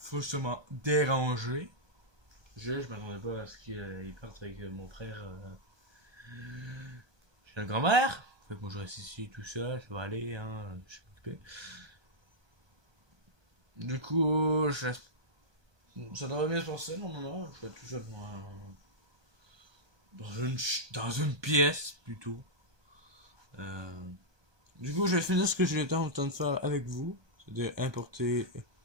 dérangé. Je m'attendais pas à ce qu'il parte avec mon frère chez la grand-mère. Fait que moi je reste ici tout seul, ça va aller, hein, je suis occupé. Du coup, ça devrait bien se passer normalement. Je vais tout seul dans une pièce plutôt. Euh, du coup, je vais finir ce que j'ai en train de faire avec vous, c'est-à-dire importer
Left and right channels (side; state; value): left; late; 1.2 ms